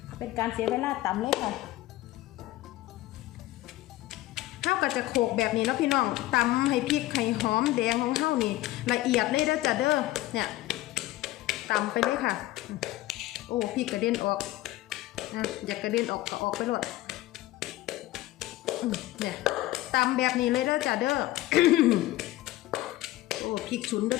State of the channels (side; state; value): right; quieter; 16.7 dB